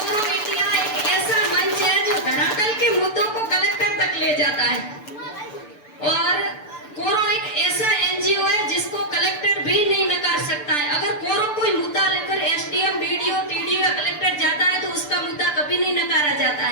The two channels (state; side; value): late; right; 6.8 ms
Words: इंडिया एक ऐसा मंच है जो धरातल के मुद्दों को कलेक्टर तक ले जाता है और कोरो एक ऐसा एनजीओ है जिसको कलेक्टर भी नहीं नकार सकता है। अगर कोरो कोई मुद्दा लेकर एसडीएम, बीडीओ, टीडीओ या कलेक्टर जाता है तो उसका मुद्दा कभी नहीं नकारा जाता